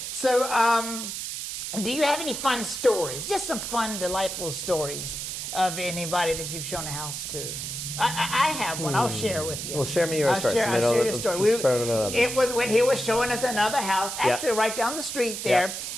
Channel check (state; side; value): noise; right; hiss, 6 dB below the sound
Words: So, do you have any fun stories? Just some fun, delightful stories of anybody that you've shown a house to? I have one. I'll share with you. Well, share me yours first. I'll share your story. It was when he was showing us another house, actually right down the street there.